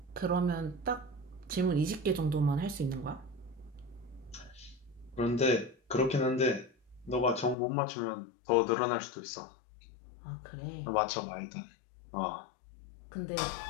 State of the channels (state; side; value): drops out; right; at 7.6 s